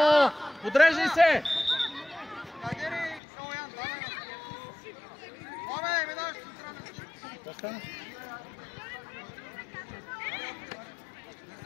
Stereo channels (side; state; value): right; drops out; at 3.2 s